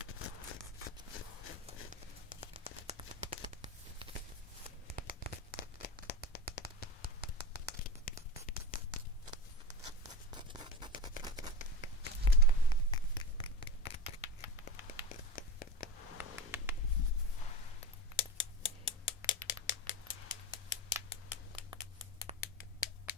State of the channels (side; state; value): both; normal; correlation 0.22